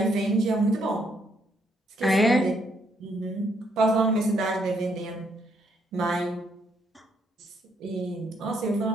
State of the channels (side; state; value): both; normal; correlation 0.72